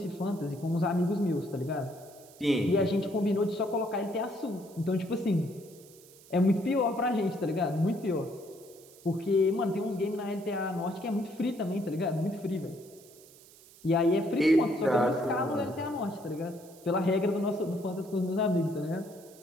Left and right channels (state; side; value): noise; right; hiss, 23 dB below the sound